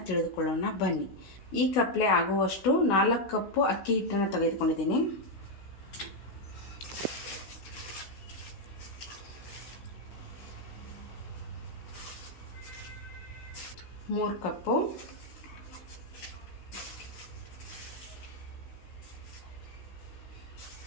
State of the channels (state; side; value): late; right; 16 ms